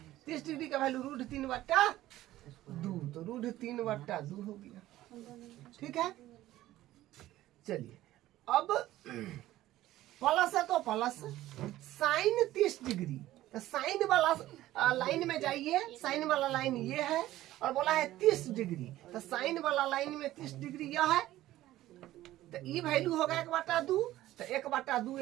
30 डिग्री का वैल्यू √3/2, तो √3/2 हो गया, ठीक है। चलिए अब प्लस है तो प्लस, साइन 30 डिग्री, तो साइन वाला लाइन में जाइए, साइन वाला लाइन ये है, और बोला है 30 डिग्री, तो साइन वाला लाइन में 30 डिग्री यह है। तो ये वैल्यू होगा 1/2, तो 1/2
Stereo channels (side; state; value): left; quieter; 15.0 dB